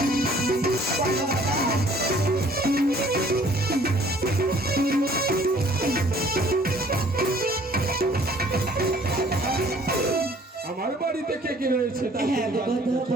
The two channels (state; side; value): normal; both; correlation 0.56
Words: বলো দাদা। আমার বাড়িতে কে কে রয়েছে তা হ্যাঁ গো কথা,